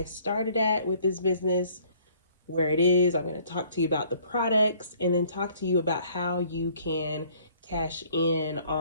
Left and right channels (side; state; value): both; inverted; correlation -0.59